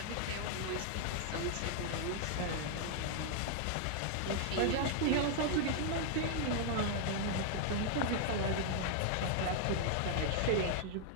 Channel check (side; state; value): both; different; correlation 0.00